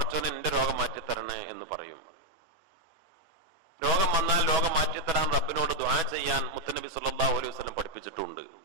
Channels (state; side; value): late; left; 6.1 ms